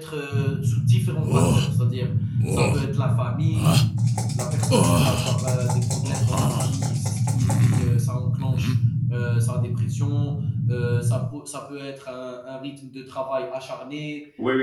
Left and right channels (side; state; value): both; identical; correlation 1.00